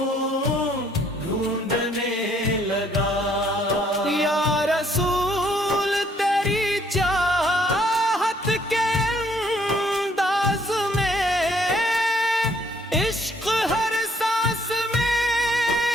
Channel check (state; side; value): normal; both; correlation 0.65